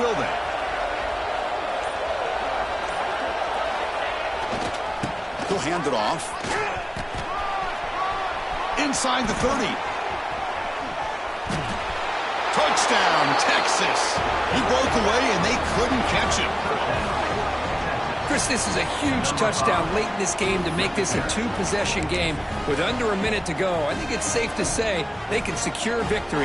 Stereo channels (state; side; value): identical; both; correlation 1.00